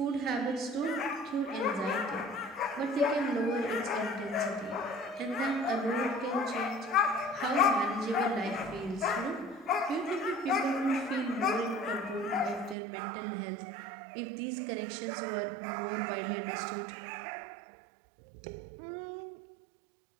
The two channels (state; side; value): drops out; left; at 12.8 s